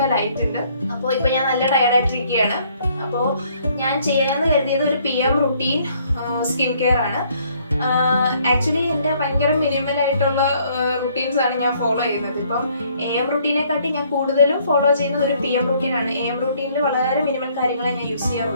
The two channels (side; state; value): both; inverted; correlation -0.64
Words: അപ്പോൾ ഇപ്പോൾ ഞാൻ നല്ല ടയർഡായിട്ടിരിക്കുകയാണ്. അപ്പോൾ ഞാൻ ചെയ്യാമെന്ന് കരുതിയത് ഒരു PM റുട്ടീൻ സ്കിൻ കെയർ ആണ്. ആക്ച്വലി എൻ്റെ ഭയങ്കര മിനിമൽ ആയിട്ടുള്ള റുട്ടീൻസ് ആണ് ഞാൻ ഫോളോ ചെയ്യുന്നത്. ഇപ്പം AM റുട്ടീനെക്കാട്ടി ഞാൻ കൂടുതലും ഫോളോ ചെയ്യുന്നത് ഒരു PM റുട്ടീനാണ്. AM റുട്ടീനിൽ വളരെ മിനിമൽ കാര്യങ്ങളെ ഞാൻ യൂസ്